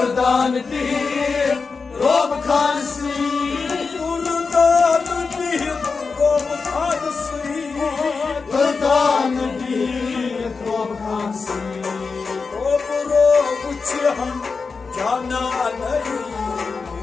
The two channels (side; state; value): right; quieter; 4.7 dB